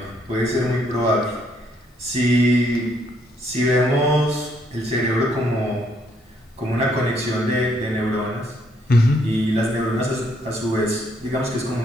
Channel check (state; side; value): normal; both; correlation 0.70